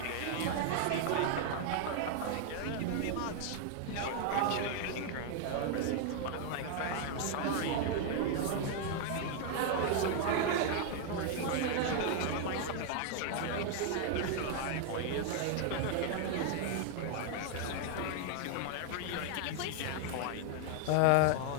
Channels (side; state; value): both; different; correlation 0.00